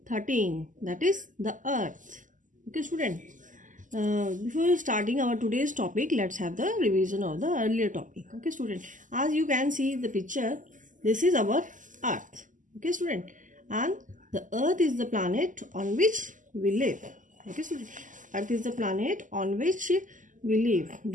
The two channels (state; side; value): late; left; 0.37 ms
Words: 13, that is the earth. Okay, student. Before starting our today's topic, let's have the revision of the earlier topic. Okay, student. As you can see the picture, this is our earth. Okay, student. And the earth is the planet on which we live. Okay, student. Earth is the planet on which we live.